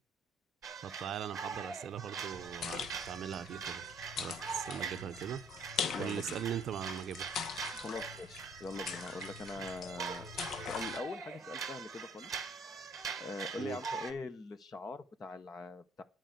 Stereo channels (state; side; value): normal; both; correlation 0.59